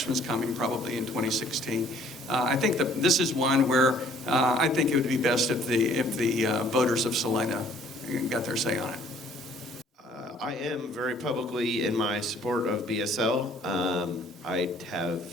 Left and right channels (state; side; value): normal; both; correlation 0.58